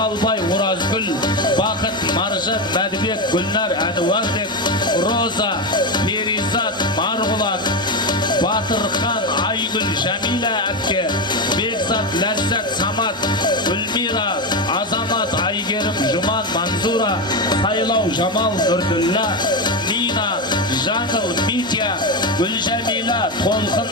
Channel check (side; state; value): both; normal; correlation 0.13